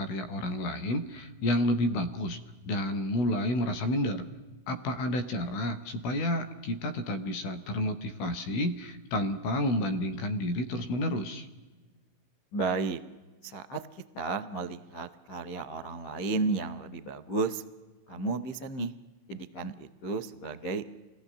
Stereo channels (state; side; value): late; right; 15 ms